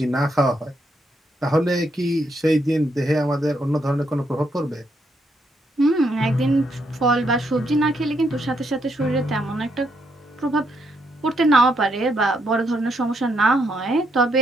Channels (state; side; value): normal; both; correlation 0.77